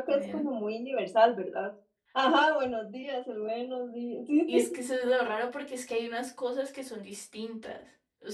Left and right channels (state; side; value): identical; both; correlation 1.00